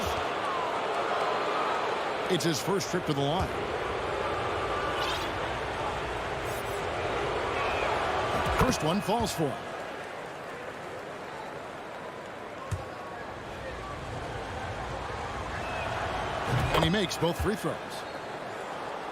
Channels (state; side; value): identical; both; correlation 1.00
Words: It's his first trip to the line. First one falls for him. And he makes both free throws.